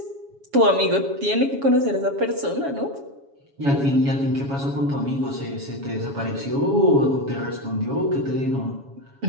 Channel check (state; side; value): late; left; 7.2 ms